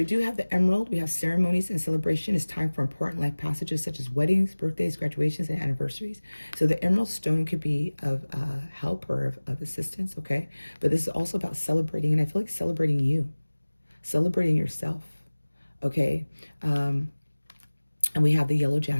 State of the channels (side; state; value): both; inverted; correlation -1.00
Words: do have the emerald. We have ceremonies and celebration. It's time for important life passages such as weddings, birthdays, graduations, and anniversaries. So the emerald stone could be of help or of assistance, okay? But this is also about celebrating, and I feel like celebrating you, celebrating yourself, okay? And we have the yellow